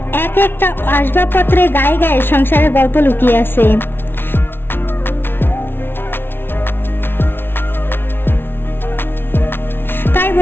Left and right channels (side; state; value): right; late; 0.11 ms